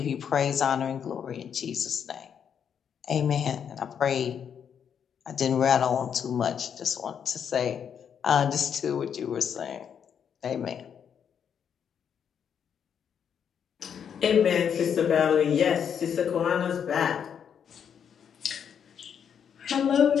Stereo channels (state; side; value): quieter; right; 7.9 dB